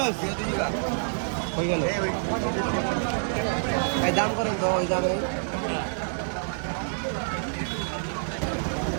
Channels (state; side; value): silent; left; digital silence